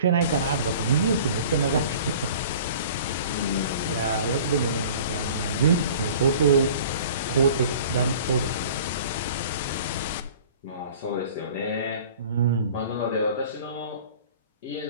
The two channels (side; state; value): both; inverted; correlation -0.44